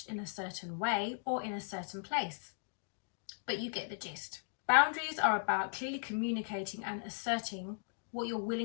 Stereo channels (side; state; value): right; silent; digital silence